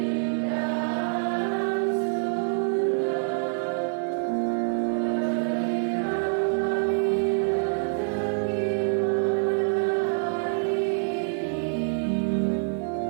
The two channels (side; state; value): left; silent; 61 dB below the other